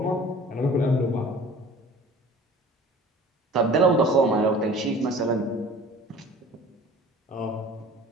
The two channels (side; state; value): both; normal; correlation 0.45